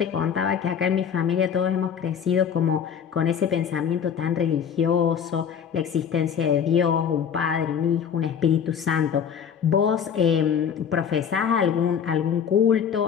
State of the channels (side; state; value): right; quieter; 7.7 dB